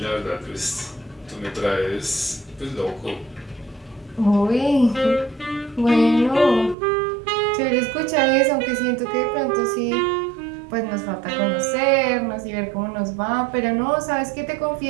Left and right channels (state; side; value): drops out; left; at 6.8 s